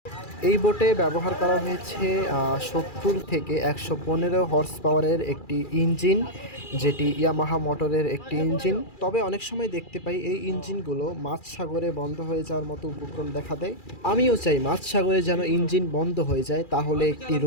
এই বোটে ব্যবহার করা হয়েছে 70 থেকে 115 হর্স পাওয়ারের একটি ইঞ্জিন, যেটি ইয়ামাহা মোটরের একটি ইঞ্জিন। তবে অনেক সময় দেখতে পাই এই ইঞ্জিনগুলো মাঝ সাগরে বন্ধ হয়ে যাওয়ার মতো উপক্রম দেখা দেয়। আমিও চাই মাঝ সাগরে যেন ইঞ্জিন বন্ধ হয়ে যায়, তাহলে একটি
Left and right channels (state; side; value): late; right; 2.4 ms